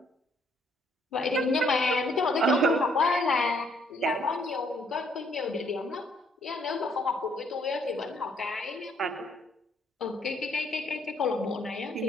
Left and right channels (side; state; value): both; normal; correlation 0.67